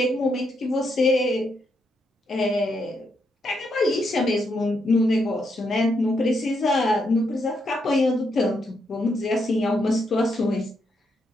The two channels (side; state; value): both; normal; correlation 0.79